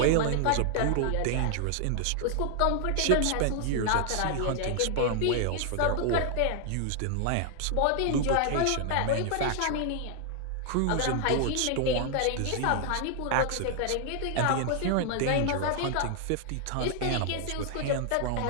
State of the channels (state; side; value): different; both; correlation 0.00